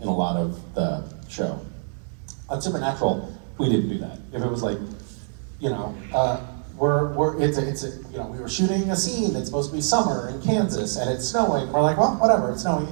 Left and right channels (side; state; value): left; silent; 62 dB below the other